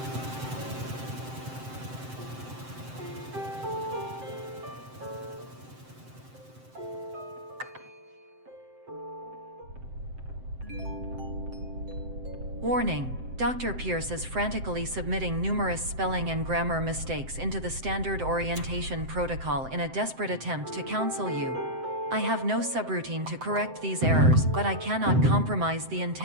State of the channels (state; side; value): late; left; 7.7 ms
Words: Warning: Dr. Pierce is frantically submitting numerous spelling and grammar mistakes into the standard orientation protocol in a desperate attempt to counsel you. I have no subroutine to correct these errors, but I cannot compromise the